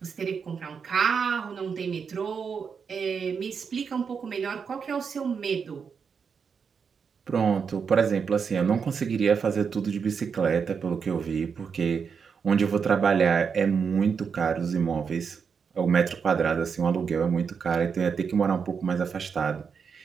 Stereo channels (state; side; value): quieter; left; 6.2 dB